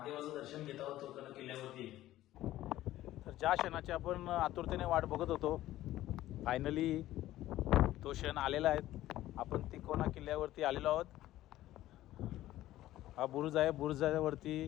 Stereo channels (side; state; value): right; quieter; 14.7 dB